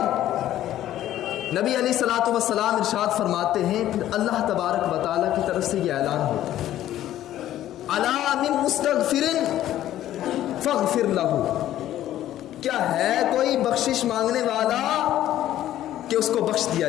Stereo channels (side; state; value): right; quieter; 12.8 dB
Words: نبی علیہ الصلوۃ والسلام ارشاد فرماتے ہیں، پھر اللہ تبارک و تعالیٰ کی طرف سے یہ اعلان ہوتا ہے، الا من مستغفر فاغفر لہ، کیا ہے کوئی بخشش مانگنے والا کہ اس کو بخش دیا